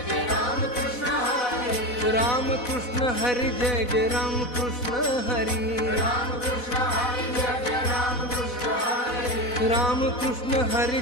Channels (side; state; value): right; late; 4.1 ms